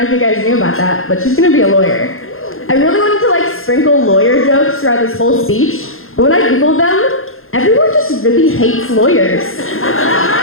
if you guys knew about that, but she's gonna be a lawyer. I really wanted to like sprinkle lawyer jokes throughout this whole speech, but when I Googled them, everyone just really hates lawyers.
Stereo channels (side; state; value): right; late; 0.60 ms